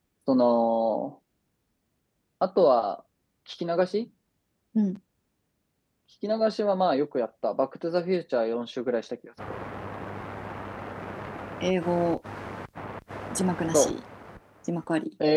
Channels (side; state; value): both; identical; correlation 1.00